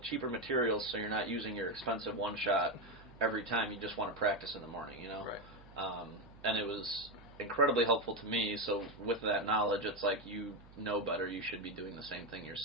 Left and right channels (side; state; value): right; noise; hum, 21 dB below the sound